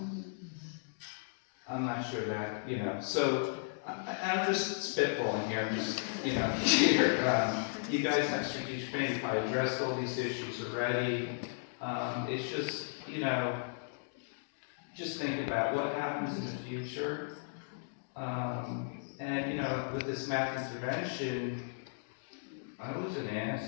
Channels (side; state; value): right; silent; digital silence